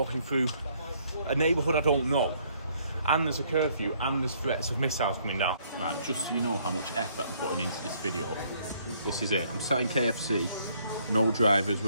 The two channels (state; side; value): inverted; both; correlation -0.66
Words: through a neighbourhood I don't know. And there's a curfew and there's threats of missiles coming down. Right, just so you know how much effort I'm putting into this video, this is it. I'm sat in KFC, no drivers